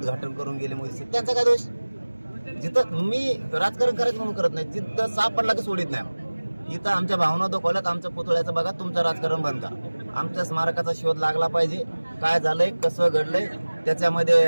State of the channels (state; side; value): inverted; both; correlation -1.00